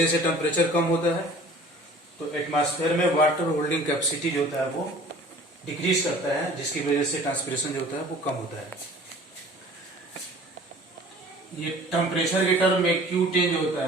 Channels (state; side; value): normal; both; correlation 0.47